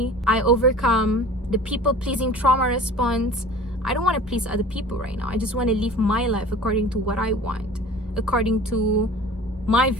I overcome the people pleasing trauma response. I don't want to please other people right now. I just want to live my life according to what I want, according to my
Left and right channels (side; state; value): both; normal; correlation 0.42